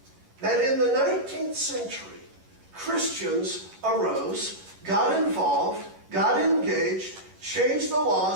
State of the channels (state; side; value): late; left; 11 ms